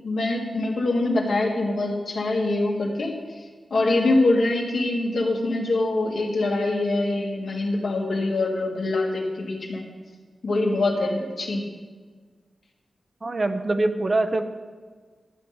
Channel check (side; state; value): both; normal; correlation 0.92